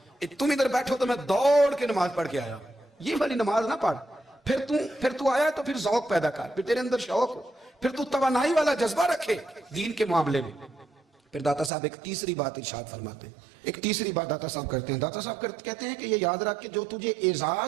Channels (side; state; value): left; drops out; at 11.7 s